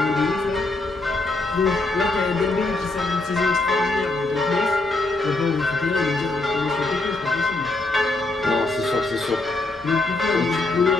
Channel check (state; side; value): quieter; right; 3.1 dB